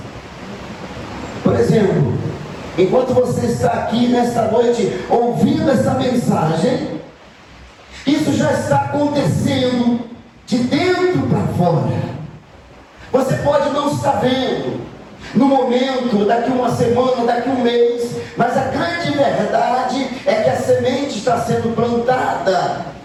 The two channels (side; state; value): both; identical; correlation 1.00